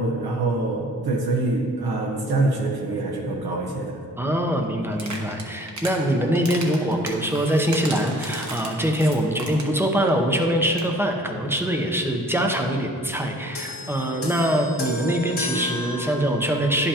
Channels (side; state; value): both; normal; correlation 0.53